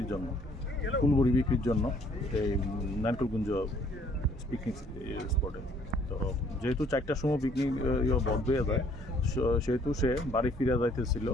জন্য, ফুল বড়ি বিক্রির জন্য এই নারকেলকুঞ্জ পিকনিক স্পটে। তো যেহেতু 4টার সময় পিকনিক বন্ধ হয়ে যায়, সেহেতু সে বাড়ি ফিরে যাইতেছিল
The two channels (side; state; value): both; normal; correlation 0.61